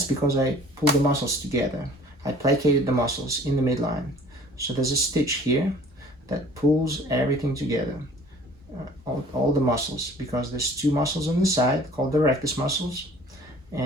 because I pulled the muscles together. I plicated the muscles in the midline. So there's a stitch here that pulls everything together, all the muscles, because there's two muscles on the side called the rectus muscles,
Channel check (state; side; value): normal; both; correlation 0.50